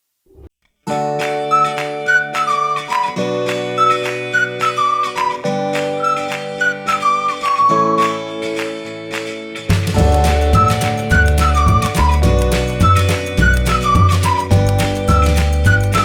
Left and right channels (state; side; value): identical; both; correlation 1.00